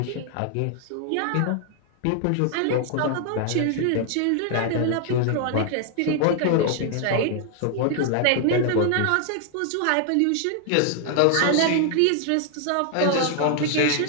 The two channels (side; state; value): both; different; correlation 0.00